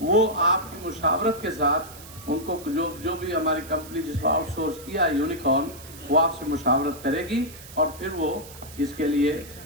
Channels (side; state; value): right; noise; hiss, 17 dB below the sound